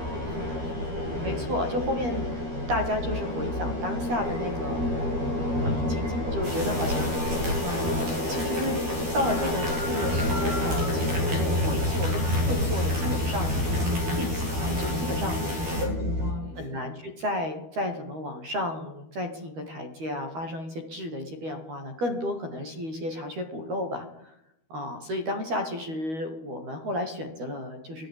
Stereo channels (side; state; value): left; late; 13 ms